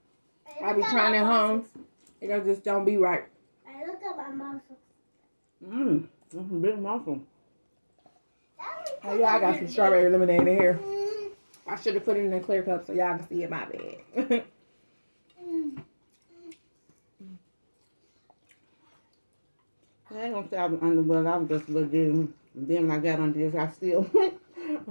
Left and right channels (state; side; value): inverted; both; correlation -1.00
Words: I be trying at home. It just don't be right. I look at my muscles. That's a big muffin. Oh yeah, I got some strawberry lemonade in here. I should have put it in a clear cup so y'all can see it. My bad. I ain't gonna say I was underwhelmed. I was just legit. And then when I got on this, I still got